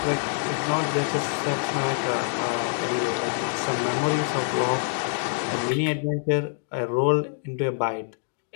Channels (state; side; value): silent; right; digital silence